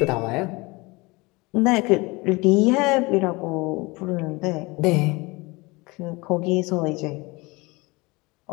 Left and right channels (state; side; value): quieter; right; 24.5 dB